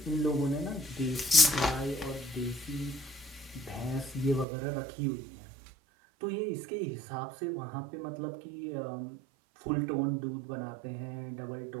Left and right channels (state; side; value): drops out; left; at 4.5 s